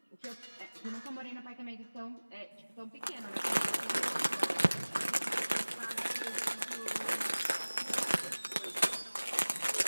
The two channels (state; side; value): inverted; both; correlation -1.00